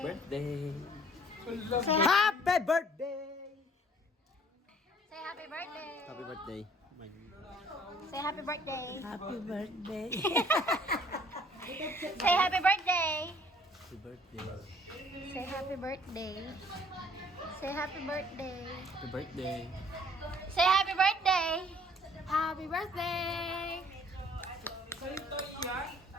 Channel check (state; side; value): normal; both; correlation 0.57